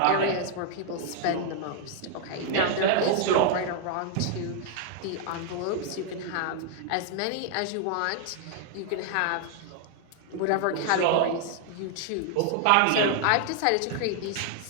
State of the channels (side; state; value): both; different; correlation 0.00